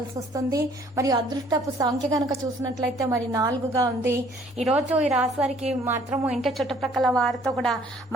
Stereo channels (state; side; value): normal; both; correlation 0.59